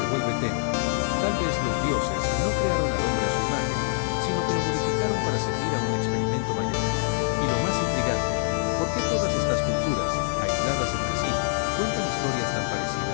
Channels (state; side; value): silent; right; digital silence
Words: vuelve tenue. Tal vez los dioses no crearon al hombre a su imagen, sino que lo modificaron para servir a un experimento mayor. Y lo más intrigante, ¿por qué todas estas culturas, aisladas entre sí, cuentan historias tan